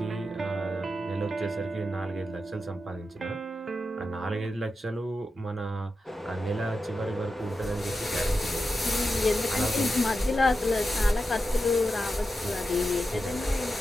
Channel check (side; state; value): both; normal; correlation 0.89